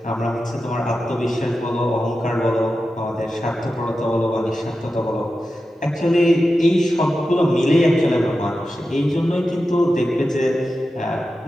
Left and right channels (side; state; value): both; normal; correlation 0.92